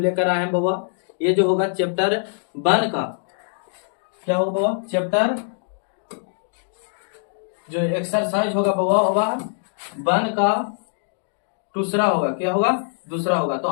आए हैं बाबा। ये जो होगा चैप्टर 1 का क्या होगा बाबा, चैप्टर जो एक्सरसाइज होगा बाबा 1 का दूसरा होगा। क्या होगा? दूसरा होगा। तो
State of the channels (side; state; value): right; silent; digital silence